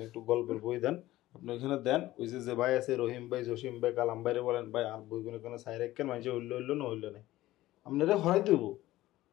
একটু গল্পের বই দেন, আপনি ওইখানে দেন। ওই যে ভাই আছে রহিম ভাই, জসিম ভাই, কালাম ভাইরে বলেন ভাই আর বইগুলো কোনো সাইড রাখেন, মানুষে হইলো না হইলো না, আপনারা হরাই দেব।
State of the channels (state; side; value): quieter; right; 16.2 dB